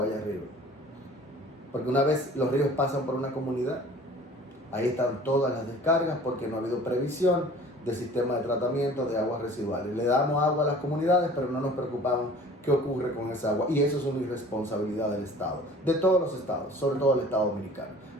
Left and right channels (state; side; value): normal; both; correlation 0.47